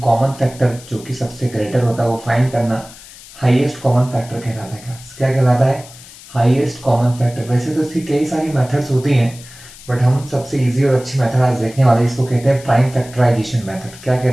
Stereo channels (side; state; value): left; noise; hiss, 19 dB below the sound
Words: फैक्टर जो कि सबसे ग्रेटर होता है वो फाइंड करना हाईएस्ट कॉमन फैक्टर कहलाता है। क्लास क्या कहलाता है? Highest common factor. वैसे तो इसकी कई सारी मेथड्स होती हैं, बट हम सबसे इजी और अच्छी मेथड आज देखने वाले हैं। इसको कहते हैं प्राइम फैक्टराइजेशन मेथड। क्या